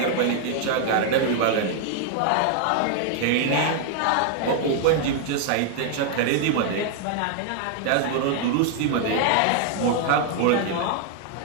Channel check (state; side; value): different; both; correlation 0.00